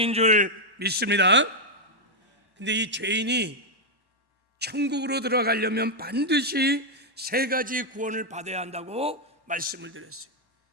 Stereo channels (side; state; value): left; late; 1.1 ms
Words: 줄 믿습니다. 근데 이 죄인이 천국으로 들어가려면 반드시 세 가지 구원을 받아야 한다고 말씀을 드렸어요.